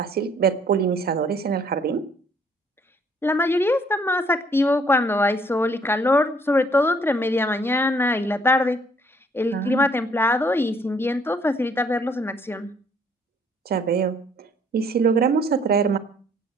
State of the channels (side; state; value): both; normal; correlation 0.63